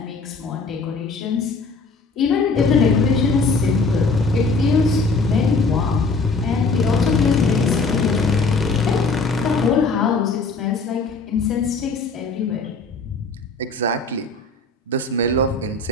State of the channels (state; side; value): quieter; right; 3.8 dB